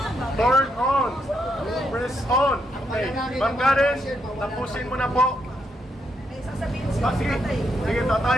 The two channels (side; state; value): both; normal; correlation 0.79